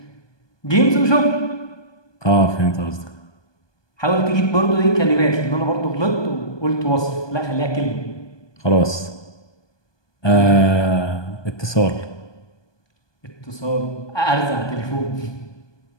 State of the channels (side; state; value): right; late; 1.2 ms